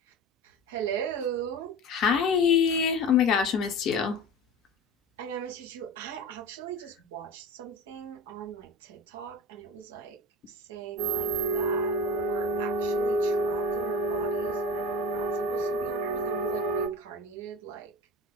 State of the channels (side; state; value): both; normal; correlation 0.32